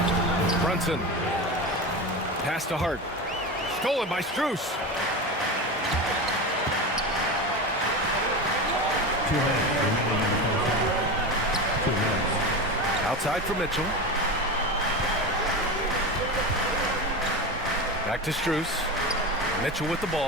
Brunson. Pass to Hart. Stolen by Strus. Outside for Mitchell. Back to Strus. Mitchell with the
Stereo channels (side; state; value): both; normal; correlation 0.23